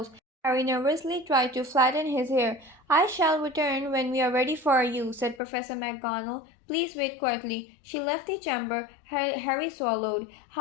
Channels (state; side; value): drops out; right; at 5.4 s